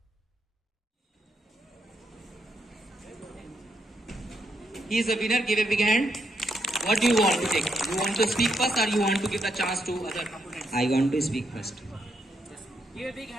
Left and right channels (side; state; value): both; normal; correlation 0.78